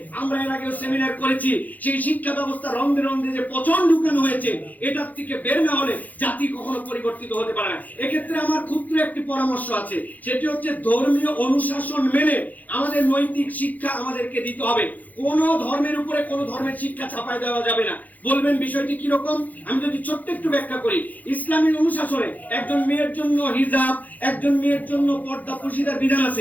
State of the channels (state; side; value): late; right; 0.080 ms